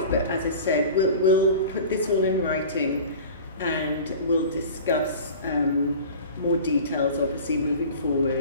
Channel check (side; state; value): both; inverted; correlation -0.38